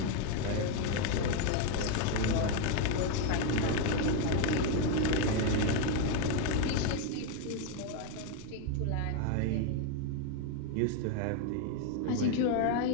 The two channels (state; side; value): different; both; correlation 0.01